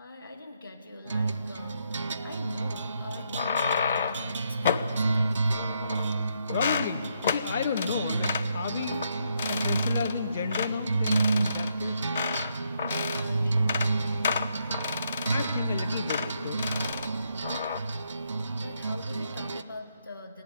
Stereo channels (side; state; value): both; inverted; correlation -0.77